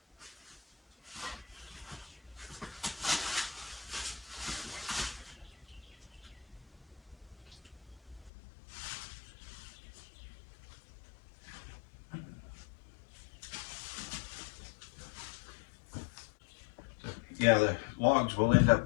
Yeah, the logs will end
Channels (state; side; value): drops out; right; at 8.3 s